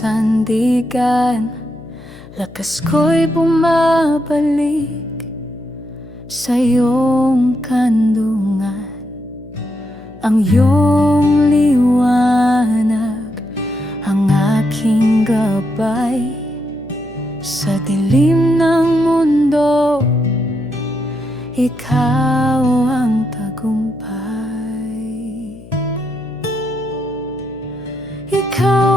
Lakas ko'y bumabalik sa iyong kandungan. Ang iyong liwanag ang aking gabay. Sa dilim ng mundo, ikaw ang tagumpay.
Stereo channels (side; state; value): left; noise; hum, 19 dB below the sound